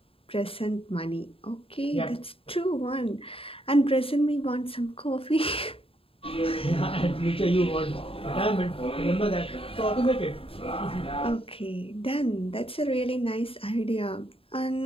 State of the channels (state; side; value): late; right; 0.27 ms